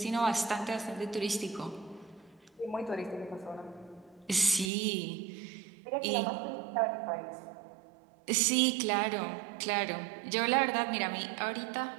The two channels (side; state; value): left; drops out; at 4.7 s